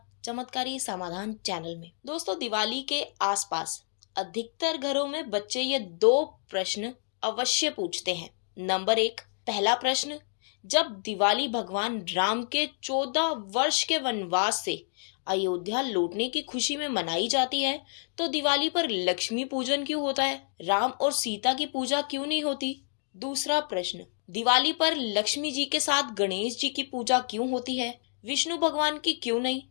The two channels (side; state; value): right; silent; digital silence